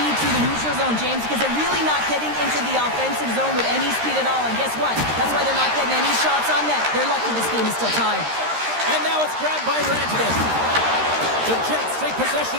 through the neutral zone, James, because they're really not getting into the offensive zone with any speed at all. And guess what? That's why they're not getting any shots on net. They're lucky this game is still tied. And now it's grabbed by Rantanen. The Jets take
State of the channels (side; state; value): left; late; 13 ms